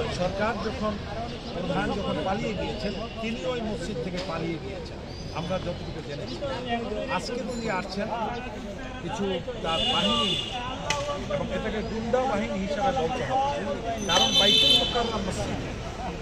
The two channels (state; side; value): identical; both; correlation 1.00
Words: সরকার যখন প্রধান যখন পালিয়ে গিয়েছেন তিনি ওই মসজিদ থেকে পালিয়ে গিয়েছেন আমরা যতটুকু জেনেছি। আজকে তিনি আসছেন কিছু তার বাহিনী এবং এটাকে গুন্ডা বাহিনী হিসাবে বলতে হবে, কারণ বাইতুল মোকাররম মসজিদ